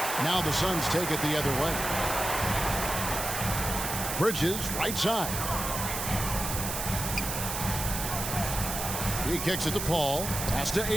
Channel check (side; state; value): right; noise; hiss, 4 dB below the sound